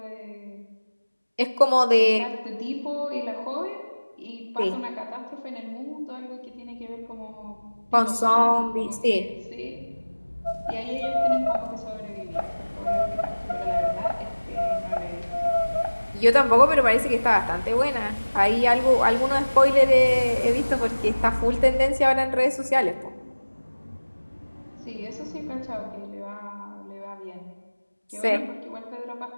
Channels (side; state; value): both; inverted; correlation -1.00